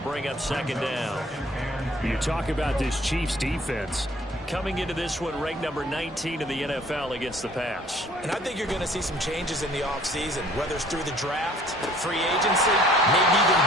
up 2nd down. You talk about this Chiefs defense. Coming into this one, ranked number 19 in the NFL against the pass. And I think you're going to see some changes in the offseason, whether it's through the draft, free agency, maybe even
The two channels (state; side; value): normal; both; correlation 0.56